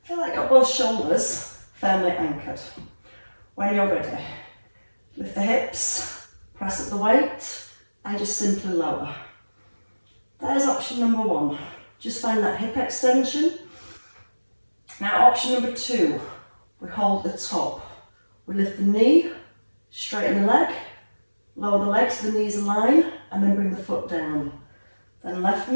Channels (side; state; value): both; inverted; correlation -1.00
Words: Feel like you've got both shoulders firmly anchored. When you're ready, lift the hips, press up the weight, and just simply lower. There's option number 1. Just find that hip extension. Now option number 2, we hold the top. We lift the knee, straighten the leg, lower the leg so the knees align, and then bring the foot down. Then left